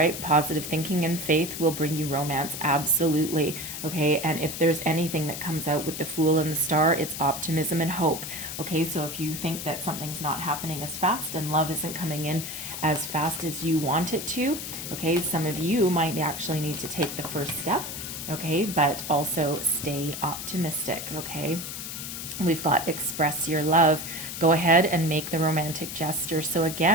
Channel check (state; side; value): noise; left; hiss, 7 dB below the sound